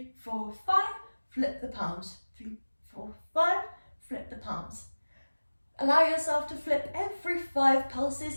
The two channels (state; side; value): inverted; both; correlation -1.00